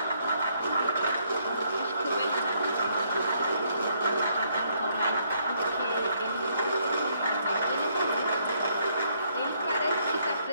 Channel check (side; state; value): both; inverted; correlation -0.70